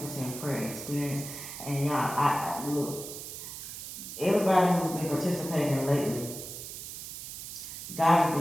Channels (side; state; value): right; noise; hiss, 9 dB below the sound